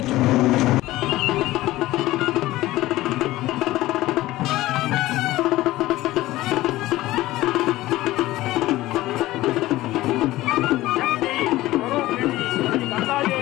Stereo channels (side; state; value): right; quieter; 17.0 dB